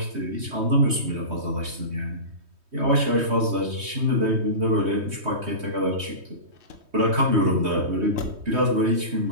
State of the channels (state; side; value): late; left; 3.2 ms